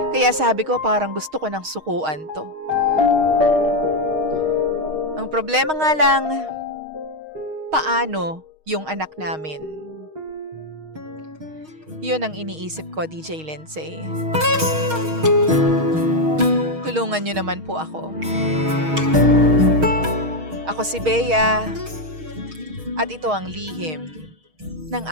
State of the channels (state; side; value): late; left; 6.4 ms